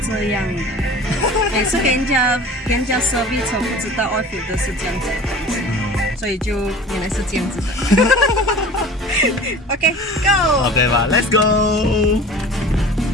这样的，每次跟人家 service 车不知道 oil filter 是这样子的东西，所以就原来是这样子的。OK，Go。OK 吧，Let's go。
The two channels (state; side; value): normal; both; correlation 0.41